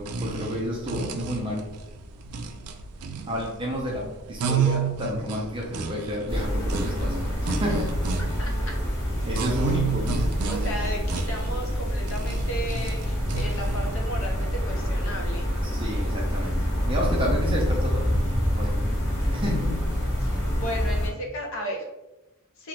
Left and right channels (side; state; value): both; normal; correlation 0.69